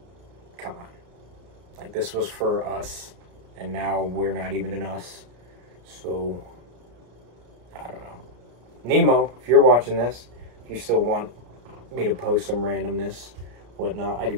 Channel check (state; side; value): late; left; 33 ms